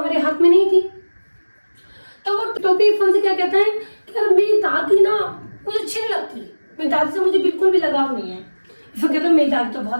हाथ में नहीं थी। तो वो टोपी इरफान से क्या कहता है कि यार मेरी दादी ना मुझे अच्छी नहीं लगती, मेरी दादी से मुझे बिल्कुल भी लगाव नहीं है। इरफान कहता है मेरी दादी तो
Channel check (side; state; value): both; inverted; correlation -1.00